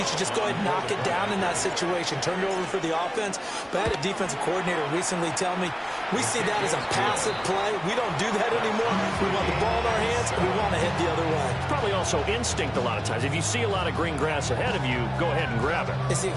should just go ahead and knock it down in that situation. Turn it over for the offense. But I had a defensive coordinator recently tell me, we see that as a passive play. We don't do that anymore. We want the ball in our hands, and we want to head the other way. Probably also instinct a lot of times. If you see a lot of green grass ahead of you, go ahead and grab it. It's the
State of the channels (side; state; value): both; identical; correlation 1.00